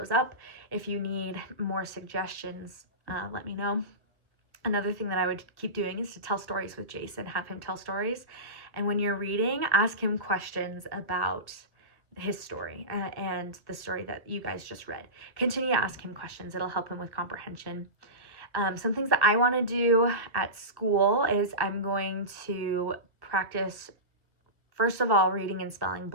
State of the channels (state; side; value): late; left; 1.3 ms